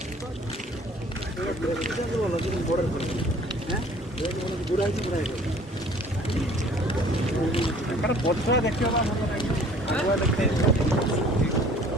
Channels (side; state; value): both; normal; correlation 0.52